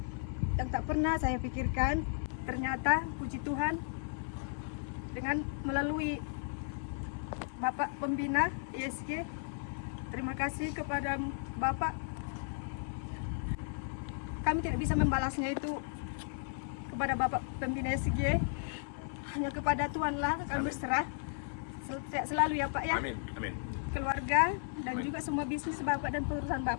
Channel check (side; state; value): right; silent; 54 dB below the other